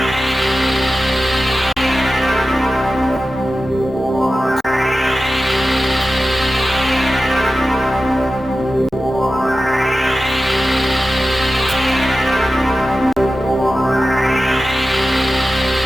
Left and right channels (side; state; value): both; normal; correlation 0.94